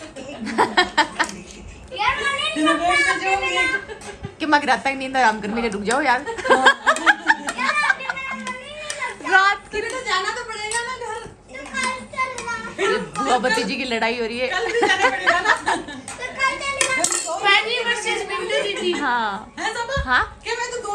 कि मैं रात तक नींद आराम करने के रुक जाओ यार। रात की तो जाना तो पड़ेगा ना घर। बुआ भतीजी की लड़ाई हो रही है। कल भी जाना पड़ेगा ना। फैनी वर्सेस विंटर दीदी। हाँ है सब? हाँ क्या मैं तो 2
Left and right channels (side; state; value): both; identical; correlation 1.00